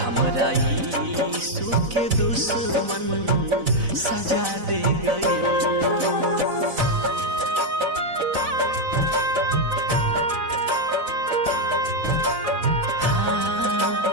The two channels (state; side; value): late; left; 4.0 ms